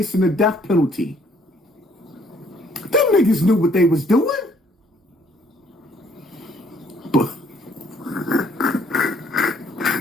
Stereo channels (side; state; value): both; normal; correlation 0.63